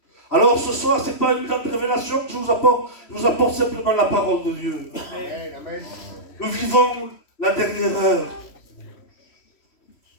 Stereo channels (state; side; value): late; right; 3.1 ms